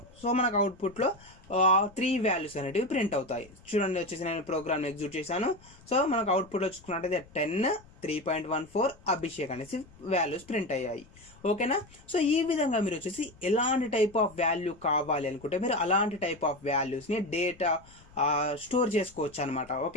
సో మనకు అవుట్పుట్లో 3 వాల్యూస్ అనేటివి ప్రింట్ అవుతాయి. చూడండి, వచ్చేసి నేను ప్రోగ్రామ్ని ఎగ్జిక్యూట్ చేశాను. సో మనకు అవుట్పుట్లో చూసుకున్నట్టయితే 10, 3.14 అభిషేక్ అనేసి వాల్యూస్ ప్రింట్ అయ్యాయి. ఓకేనా. సో ఈ విధంగా మీరు వచ్చేసి ఎలాంటి టైప్ ఆఫ్ వాల్యూ కావాలి అనుకుంటే మీరు అలాంటి టైప్ ఆఫ్ వాల్యూస్ని డేటా స్టోర్ చేసుకోవచ్చు అనమాట.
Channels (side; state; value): left; noise; rumble, 24 dB below the sound